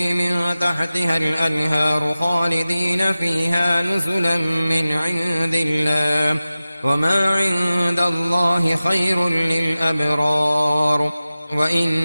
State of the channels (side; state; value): both; inverted; correlation -0.96